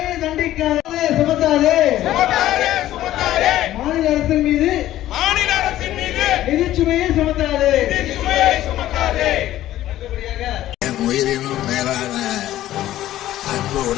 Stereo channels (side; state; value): right; quieter; 13.8 dB